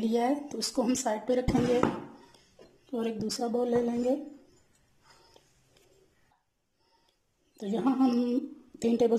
है, तो इसको हम साइड पे रखेंगे और एक दूसरा बाउल ले लेंगे। तो यहाँ हम 3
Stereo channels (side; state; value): both; identical; correlation 1.00